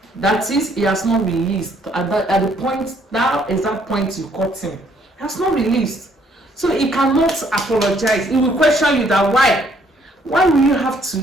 That is, he has not released at the point, that exact point you caught him. He has not released, so he cannot apologize. He will question you that why will you have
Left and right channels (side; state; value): both; normal; correlation 0.66